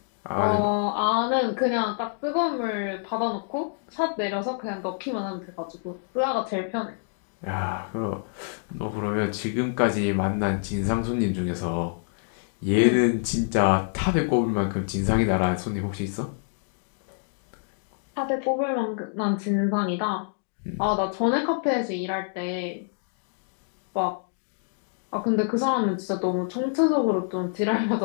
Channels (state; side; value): silent; right; digital silence